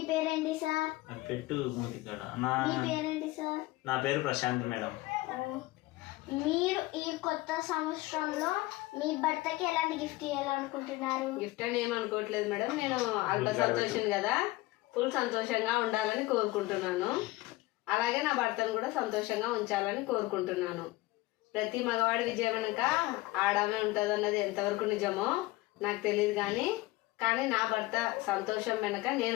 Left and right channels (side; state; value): right; quieter; 19.4 dB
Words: పేరేంటి సార్? పెట్టు మూతికాడ. మీ పేరేంటి సార్? నా పేరు ప్రశాంత్ మేడం. మీరు ఈ కొత్త సంవత్సరంలో మీ భర్తకి ఎలాంటి గిఫ్ట్ ఇవ్వాలనుకుంటున్నారు? గిఫ్ట్ అని ఏమనుకోవట్లేదు మేడం. నేను అల్ప సంతోషిని కదా, ఫుల్ సంతోషంగా ఉండాలని కోరుకుంటున్నాను. అలాగే నా భర్తను కూడా సంతోషంగా ఉంచాలని కోరుకుంటున్నాను. ప్రతి మగవాడి విజయం వెనుక ఆడమే ఉంటుంది అన్నది ఎంతవరకు నిజమో నాకు తెలియదు, కానీ నా భర్త సంతోషం వెనుక